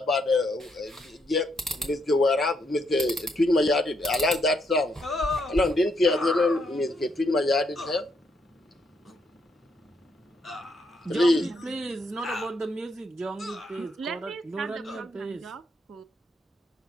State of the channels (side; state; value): both; normal; correlation 0.76